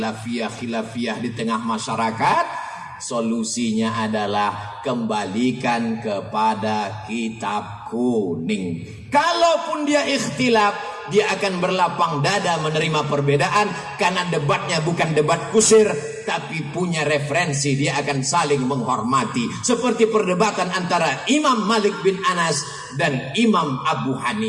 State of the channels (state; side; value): identical; both; correlation 1.00